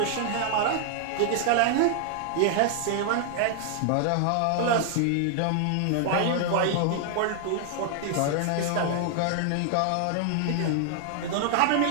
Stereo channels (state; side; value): different; both; correlation 0.00